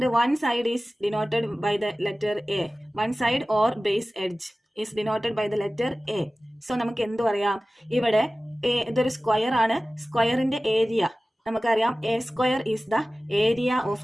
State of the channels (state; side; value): normal; both; correlation 0.97